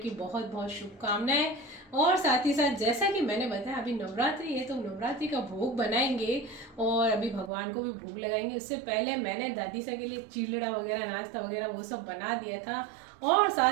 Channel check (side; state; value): left; drops out; at 7.5 s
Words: बहुत बहुत शुभकामनाएं। और साथ ही साथ जैसा कि मैंने बताया अभी नवरात्रि है तो नवरात्रि का भोग बनाएंगे और अभी भगवान को भी भोग लगाएंगे। उससे पहले मैंने दादी सा के लिए चिलड़ा वगैरह नाश्ता वगैरह वो सब बना दिया था। और